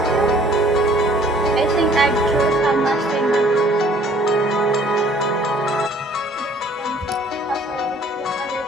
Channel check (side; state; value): both; normal; correlation 0.56